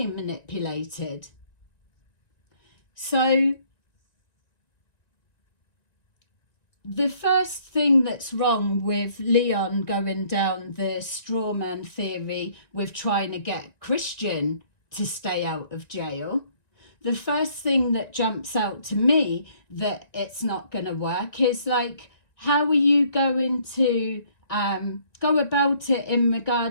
manipulated. So the first thing that's wrong with Leon going down the straw man theory with trying to get Christian to stay out of jail, the first thing that jumps out to me that it's not going to work is like, how are you going to go about it in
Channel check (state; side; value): late; right; 1.9 ms